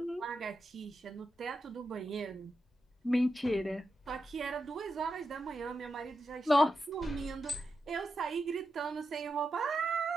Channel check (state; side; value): normal; both; correlation 0.87